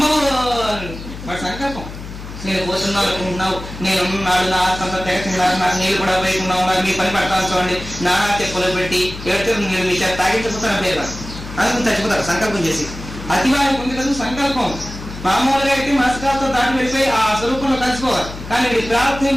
వాడి సంకల్పం. నేను పోతున్నావు అనుకుంటున్నావు, నేను నాడు నా ఆత్మంతా తెగతున్నారు, నాకు నీళ్ళు కూడా పోయిస్తున్నావు, నాకు మీ పని పడతాను చూడండి, నా తెప్పులు పెట్టి ఎవరితో నేను మీ చేత తాగించకపోతాను పేరు అనుకుని చచ్చిపోతారు సంకల్పం చేసి. అతివారికి ఉంది కదా సంకల్పం. మామూలుగా అయితే మనసుకాలతో దాటి వెళ్ళిపోయి ఆ స్వరూపంలో కలిసిపోవాలి. కానీ వీడి ప్రార్థన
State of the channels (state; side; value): noise; left; hum, 12 dB below the sound